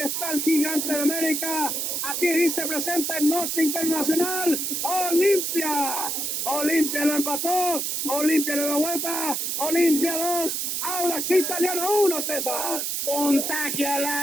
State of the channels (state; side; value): noise; right; hiss, 1 dB below the sound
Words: el gigante de América. Aquí dice presenta en Noche Internacional. Olimpia. Olimpia lo empató. Olimpia le dio vuelta. Olimpia 2. Audax Italiano 1, César. Contagia la